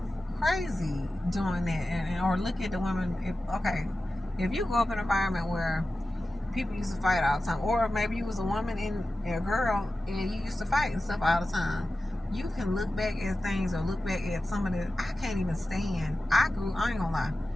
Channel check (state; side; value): normal; both; correlation 0.94